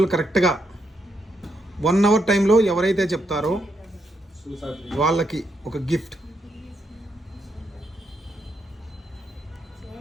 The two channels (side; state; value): both; normal; correlation 0.79